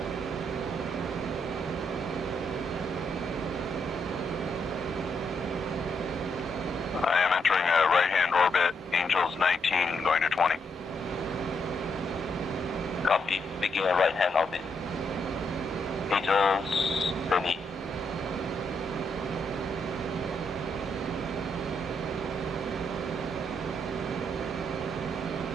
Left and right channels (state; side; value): normal; both; correlation 0.78